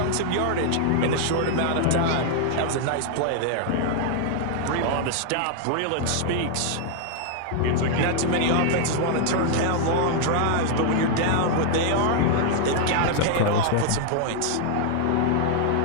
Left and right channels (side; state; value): both; different; correlation 0.00